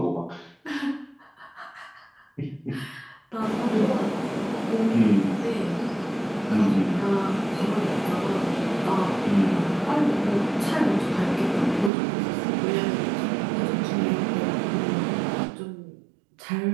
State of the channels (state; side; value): drops out; left; at 11.9 s